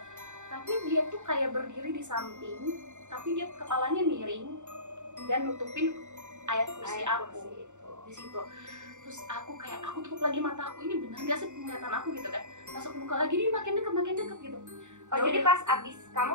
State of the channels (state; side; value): late; left; 0.84 ms